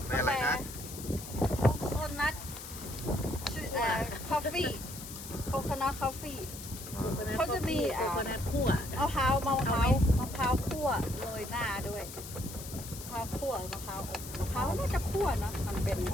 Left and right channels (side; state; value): left; noise; hiss, 11 dB below the sound